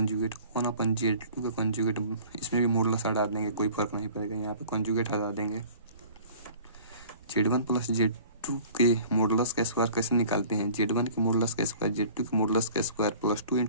1 अपन Z2 का कॉन्जुगेट, इसमें भी मॉडुलस हटा देंगे, कोई फर्क नहीं पड़ेगा, यहाँ पे कॉन्जुगेट हटा देंगे। Z1 प्लस Z2 के मॉडुलस का स्क्वायर कैसे निकालते हैं, Z1 के मॉडुलस का स्क्वायर Z2 के मॉडुलस का square plus 2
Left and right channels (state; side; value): inverted; both; correlation -0.47